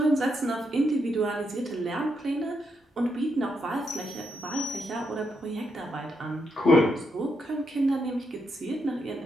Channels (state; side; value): normal; both; correlation 0.80